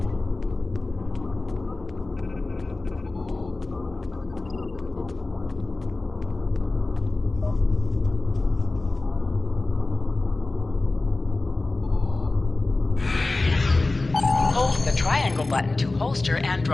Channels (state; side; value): quieter; right; 3.2 dB